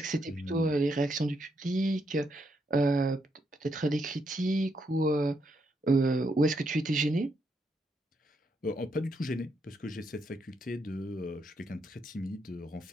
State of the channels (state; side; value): normal; both; correlation 0.78